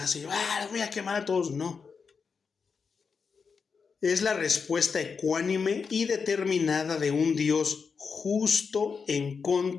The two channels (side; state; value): right; quieter; 5.5 dB